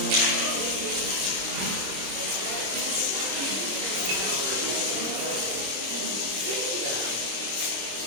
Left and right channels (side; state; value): left; late; 26 ms